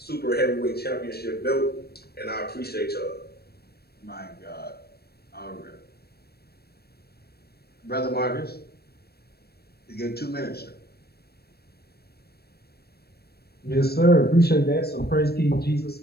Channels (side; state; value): right; late; 0.46 ms